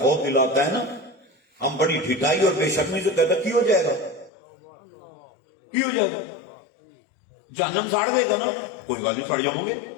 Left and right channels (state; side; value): drops out; right; at 4.3 s